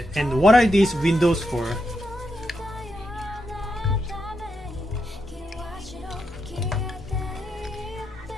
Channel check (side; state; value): both; normal; correlation 0.84